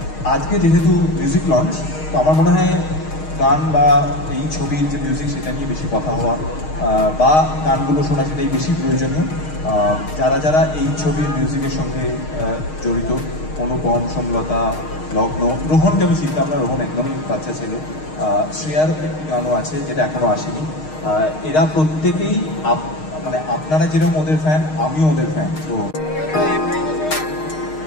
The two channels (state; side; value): late; right; 6.4 ms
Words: আজকে যেহেতু মিউজিক লঞ্চ, তো আমার মনে হয় গান বা এই ছবির যে মিউজিক সেটা নিয়ে বেশি কথা হওয়া বা গানগুলো শোনা সেটাই বেশি প্রয়োজনীয়। যারা যারা এই ছবির মিউজিকের সঙ্গে জড়িত, অনুপম, সমলতা, লগ্ন, রোহনকে আমি চিন্তা না, রোহন একদমই বাচ্চা ছেলে, শ্রেয়ার একটি গানও আছে যেটা এখনো আসেনি। এরা প্রত্যেকেই মানে আপনারা যেরকম ওদের ফ্যান, আমিও ওদের ফ্যান। তো